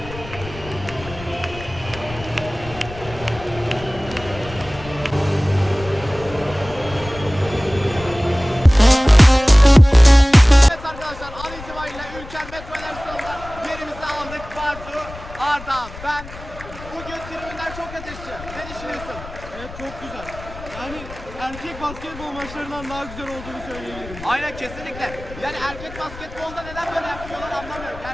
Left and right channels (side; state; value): left; noise; rumble, 15 dB below the sound